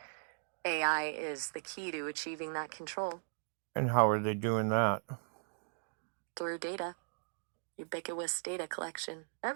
AI is the key to achieving that control. And how are they doing that? Through data. Ubiquitous data collection.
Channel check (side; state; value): left; silent; digital silence